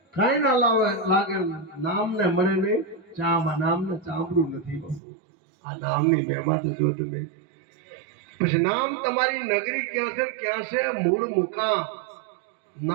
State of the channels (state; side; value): drops out; left; at 5.0 s